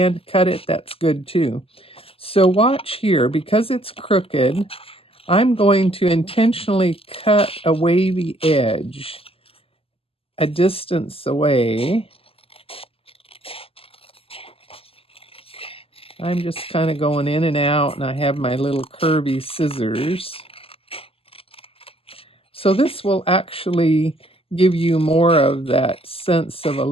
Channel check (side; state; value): right; late; 0.27 ms